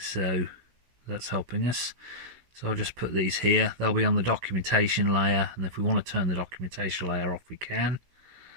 that's helping us. So I'll just put these here. They'll be on the documentation layer, and if we want to turn the documentation layer off, we can.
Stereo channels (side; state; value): left; late; 17 ms